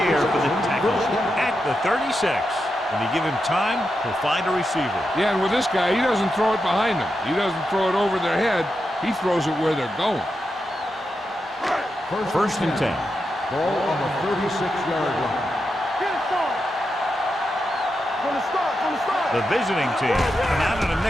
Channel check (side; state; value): both; normal; correlation 0.87